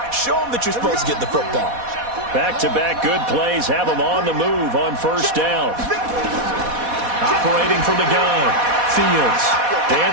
Show him that you're supposed to get the football. Back-to-back good plays have him on the move on first down. Operating from the gun. Fields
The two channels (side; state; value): left; late; 4.1 ms